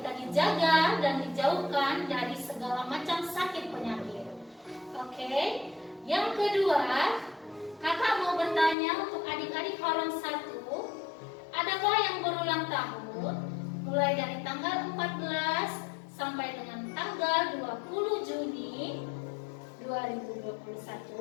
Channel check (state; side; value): drops out; right; at 8.8 s